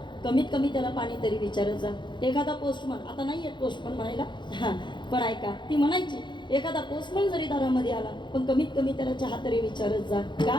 कमीत कमी त्याला पाणी तरी विचारत जा. एखादा पोस्टमन, आता नाही येत पोस्टमन म्हणायला, पण ऐका, ती म्हणायची एखादा पोस्टमन जरी दारामध्ये आला पण कमीत कमी त्याला चहा तरी विचारत जा.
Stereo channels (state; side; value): late; right; 0.23 ms